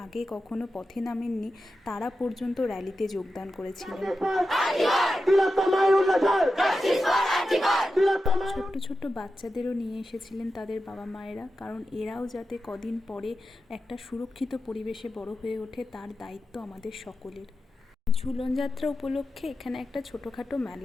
আগে কখনো পথে নামেননি তারা পর্যন্ত র্যালিতে যোগদান করেছিলেন। ছোট্ট ছোট্ট বাচ্চাদেরও নিয়ে এসেছিলেন তাদের বাবা মায়েরা, কারণ এরাও যাতে কদিন পরে একটা সুরক্ষিত পরিবেশে বড় হয়ে ওঠে তার দায়িত্ব আমাদের সকলের। ঝুলন যাত্রা উপলক্ষে এখানে একটা ছোটোখাটো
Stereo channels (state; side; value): normal; both; correlation 0.91